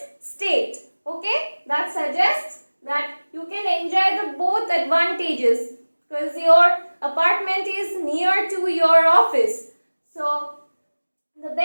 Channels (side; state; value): both; inverted; correlation -1.00